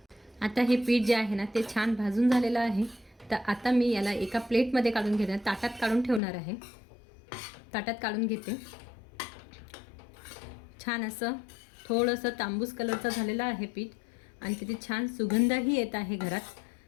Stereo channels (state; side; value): drops out; right; at 6.2 s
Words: आता हे पीठ जे आहे ना ते छान भाजून झालेलं आहे. तर आता मी याला एका प्लेटमध्ये काढून घेणार, ताटात काढून ठेवणार आहे. ताटात काढून घेते. छान असं थोडंसं तांबूस कलरचं झालेलं आहे पीठ आणि तिथे छान सुगंधही येत आहे घरात.